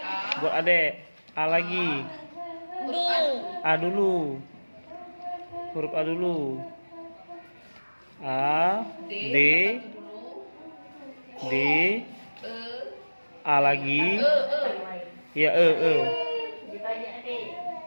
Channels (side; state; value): both; inverted; correlation -1.00